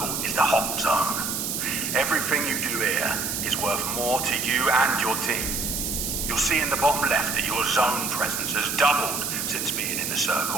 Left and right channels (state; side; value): noise; right; hiss, 2 dB below the sound